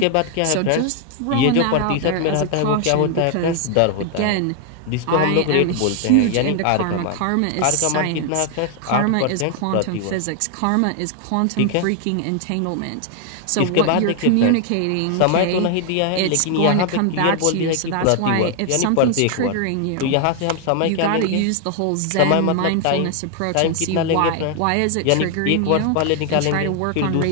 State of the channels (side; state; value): both; different; correlation 0.00